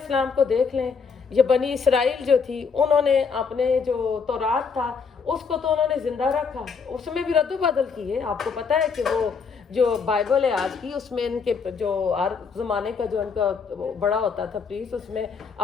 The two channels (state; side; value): quieter; right; 5.6 dB